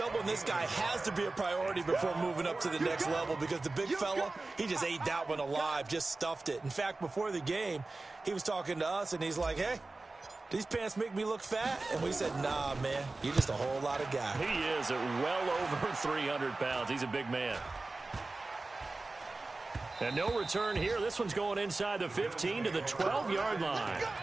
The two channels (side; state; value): left; quieter; 3.3 dB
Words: this guy has to be a priority before moving up to the next level because the big fella, he just ate that one alive, just stuffed it. In fact, before the game, he was talking to us, and he's like, hey, these pants make me look fat? And we said, nah, man, you're just a whole lot of guy. He is at well over 300 pounds. He's a big man. And no return here. This one's going inside the 15 to the 12-yard line.